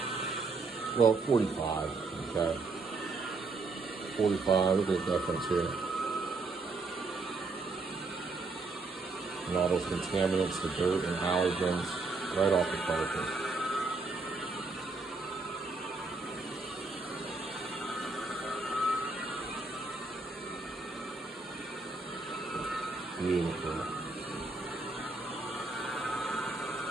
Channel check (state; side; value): quieter; left; 3.7 dB